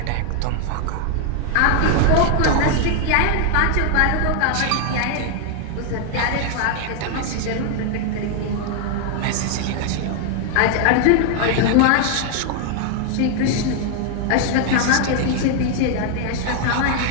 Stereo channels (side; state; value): both; different; correlation 0.00